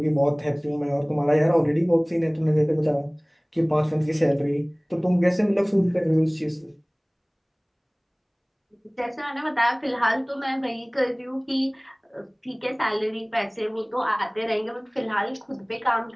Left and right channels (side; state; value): both; identical; correlation 1.00